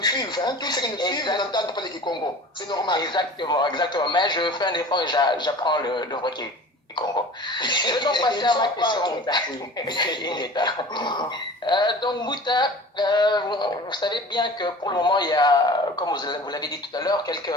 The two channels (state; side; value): normal; both; correlation 0.40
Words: suivent. Hein. Tous ceux qui nous suivent n'entendent pas les Kikongo. C'est normal. Exactement, exactement. Mais je fais un effort et j'apprends le vrai Kikongo. Je vais donc passer à ma question. Donc, Mouta, vous savez bien que pour le moment, il y a, comme vous l'avez dit tout à l'heure, quelques